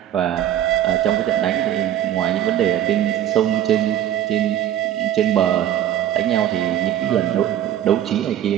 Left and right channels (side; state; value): left; quieter; 11.4 dB